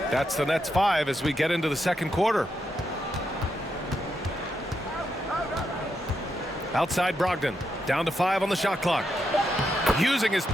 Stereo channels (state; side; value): normal; both; correlation 0.82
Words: the Nets 5 as we get into the second quarter. Outside Brogdon. Down to 5 on the shot clock. Using his